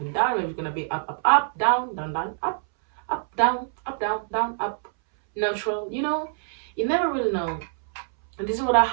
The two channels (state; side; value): silent; left; 62 dB below the other